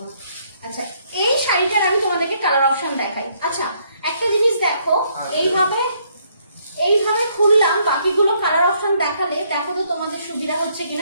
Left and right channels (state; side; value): inverted; both; correlation -0.69